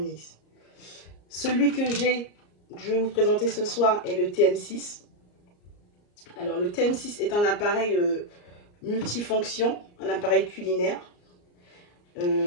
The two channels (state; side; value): late; right; 34 ms